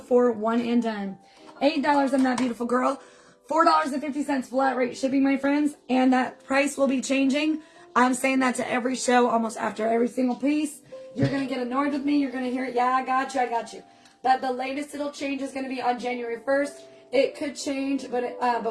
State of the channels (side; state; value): both; identical; correlation 1.00